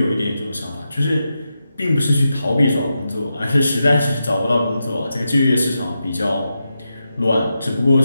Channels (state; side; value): inverted; both; correlation -0.88